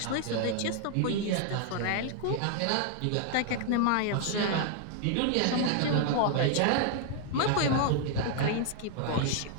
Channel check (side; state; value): both; different; correlation 0.00